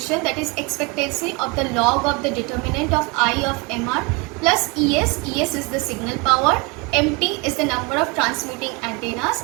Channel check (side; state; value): left; quieter; 28.1 dB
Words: that is expectancy of the log of the determinant of I of MR plus ES. ES is the signal power, MT is the number of transmitting antennas,